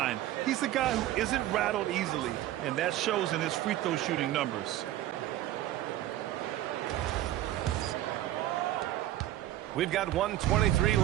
He's a guy who isn't rattled easily, and that shows in his free throw shooting numbers. We've got 1:23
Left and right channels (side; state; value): left; quieter; 13.9 dB